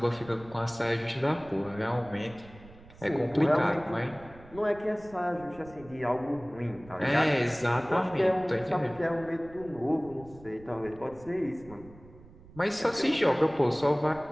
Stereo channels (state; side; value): noise; right; rumble, 21 dB below the sound